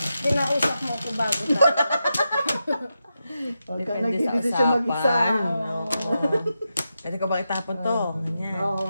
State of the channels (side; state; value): both; inverted; correlation -0.88